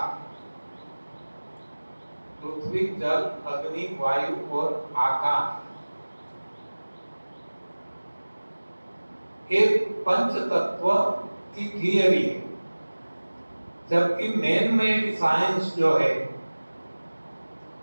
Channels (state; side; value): inverted; both; correlation -1.00